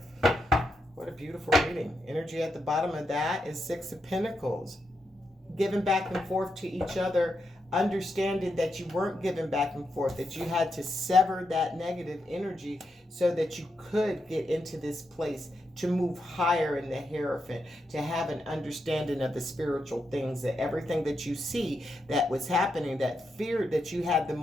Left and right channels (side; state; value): both; normal; correlation 0.84